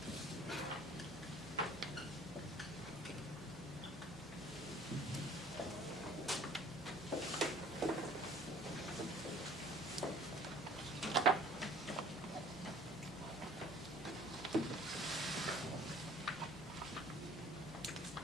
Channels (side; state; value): both; normal; correlation 0.52